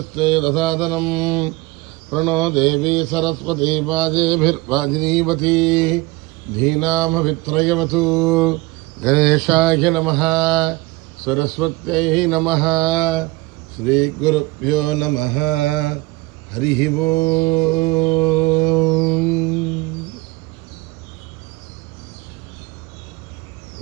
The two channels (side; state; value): left; quieter; 21.5 dB